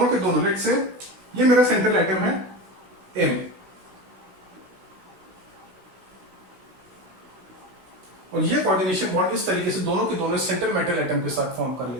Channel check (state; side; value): late; left; 16 ms